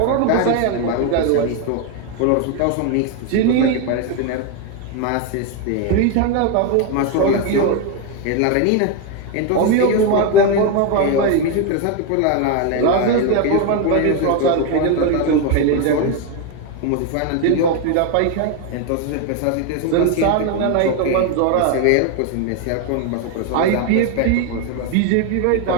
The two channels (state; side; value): different; both; correlation 0.01